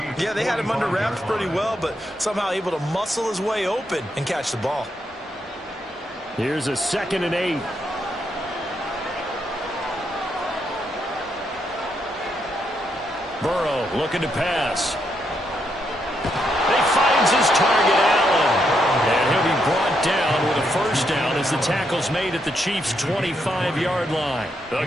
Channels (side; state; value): both; normal; correlation 0.79